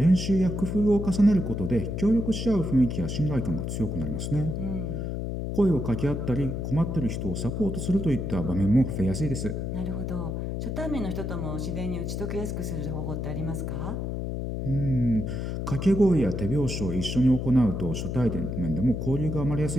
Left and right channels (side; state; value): left; noise; hum, 3 dB below the sound